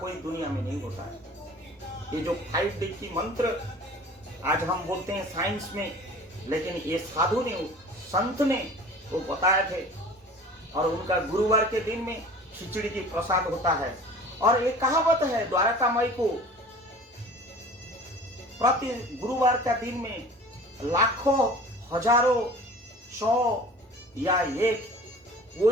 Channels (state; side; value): normal; both; correlation 0.43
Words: दुनिया में नहीं होता है। ये जो 5D की मंत्र आज हम बोलते हैं साइंस में, लेकिन ये साधु ने, संत ने वो बताए थे। और उनका गुरुवार के दिन में खिचड़ी की प्रसाद होता है। और ये कहावत है, द्वारका माई को प्रति गुरुवार का दिन में लाखों, हजारों, 100 या 1